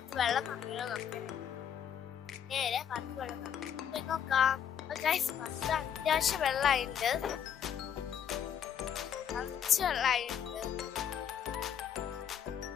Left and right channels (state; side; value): quieter; right; 8.7 dB